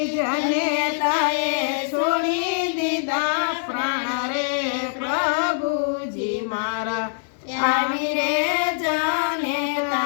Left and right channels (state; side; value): silent; right; digital silence